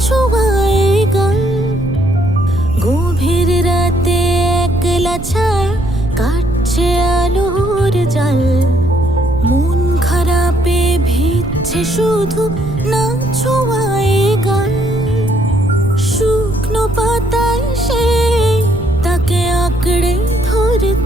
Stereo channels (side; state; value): right; noise; rumble, 9 dB below the sound